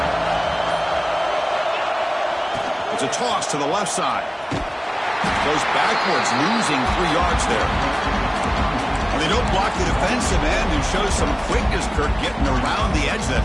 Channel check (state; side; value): identical; both; correlation 1.00